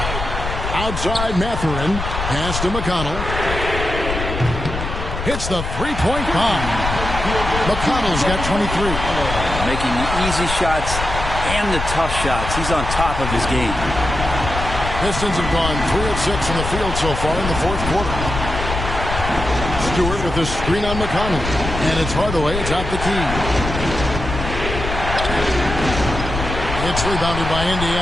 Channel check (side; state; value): left; noise; rumble, 5 dB below the sound